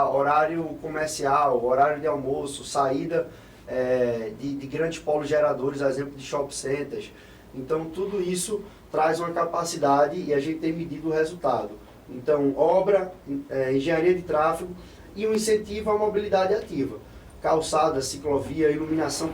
horário comercial, horário de almoço, saída de grandes polos geradores, exemplo de shopping centers. Então tudo isso traz uma capacidade e a gente tem medido o resultado. Então obra, engenharia de tráfego e um incentivo à mobilidade ativa. Calçada, ciclovia, iluminação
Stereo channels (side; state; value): both; identical; correlation 1.00